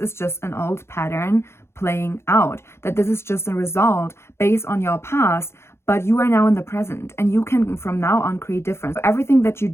just an old pattern playing out, that this is just a result based on your past, but you are now in the present and you can from now on create difference. So everything that you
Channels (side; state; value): right; late; 0.12 ms